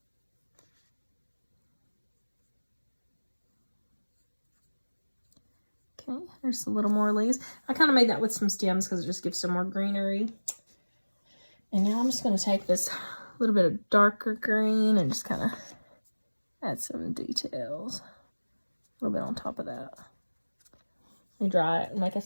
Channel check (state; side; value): inverted; both; correlation -1.00